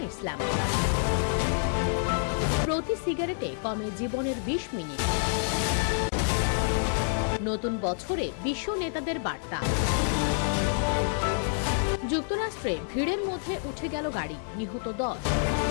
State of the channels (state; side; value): silent; right; 56 dB below the other